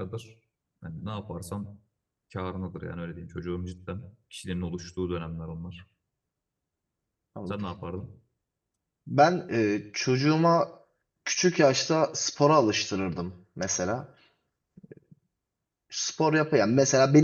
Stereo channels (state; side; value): identical; both; correlation 1.00